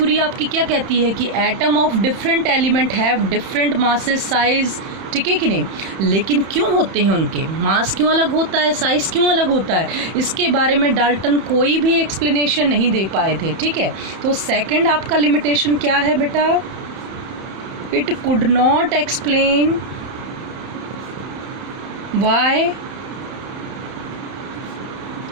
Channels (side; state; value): left; late; 31 ms